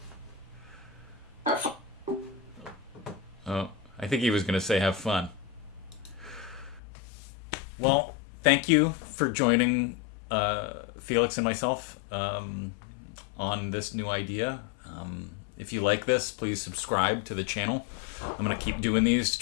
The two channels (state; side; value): drops out; right; at 6.8 s